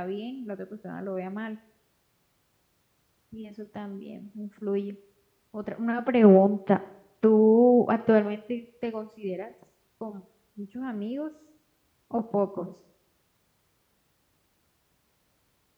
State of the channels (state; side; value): identical; both; correlation 1.00